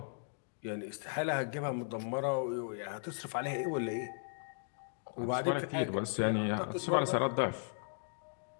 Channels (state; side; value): silent; right; digital silence